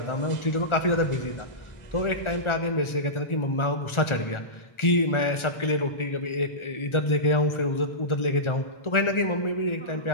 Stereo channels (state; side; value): late; right; 1.4 ms